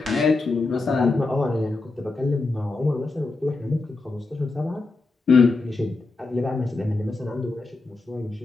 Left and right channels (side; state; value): right; quieter; 3.5 dB